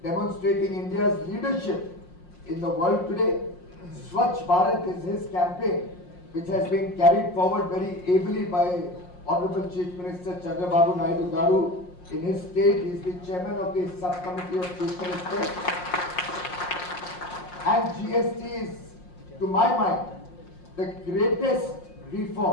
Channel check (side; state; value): right; late; 5.6 ms